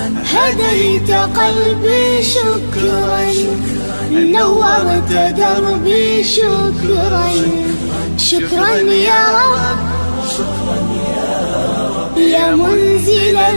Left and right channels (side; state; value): both; inverted; correlation -1.00